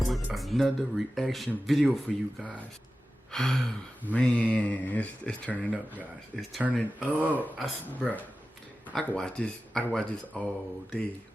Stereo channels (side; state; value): both; normal; correlation 0.94